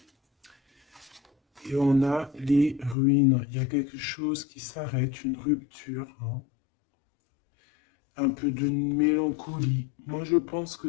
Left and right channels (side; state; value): right; drops out; at 3.0 s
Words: Et on a les ruines. Il y a quelque chose qui s'arrête, une rupture. Hein. Un peu de mélancolie. Moi, je pense